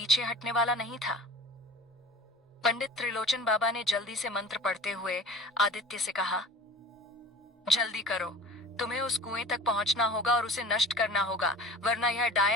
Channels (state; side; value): normal; both; correlation 0.41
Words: हटने वाला नहीं था। पंडित त्रिलोचन बाबा ने जल्दी से मंत्र पढ़ते हुए आदित्य से कहा, जल्दी करो, तुम्हें उस कुएं तक पहुंचना होगा और उसे नष्ट करना होगा, वरना यह